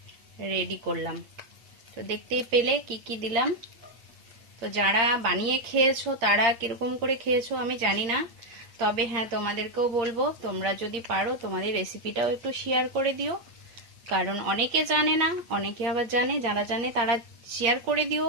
রেডি করলাম। তো দেখতেই পেলে কি কি দিলাম। তো যারা বানিয়ে খেয়েছো তারা কিরকম করে খেয়েছো আমি জানি না, তবে হ্যাঁ তোমাদেরকেও বলবো তোমরা যদি পারো তোমাদের রেসিপিটাও একটু শেয়ার করে দিও, কারণ অনেকে জানে না, অনেকে আবার জানে। যারা জানে তারা শেয়ার করে দিও।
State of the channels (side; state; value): left; late; 8.7 ms